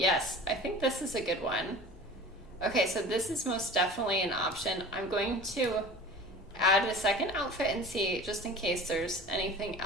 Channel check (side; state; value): both; normal; correlation 0.39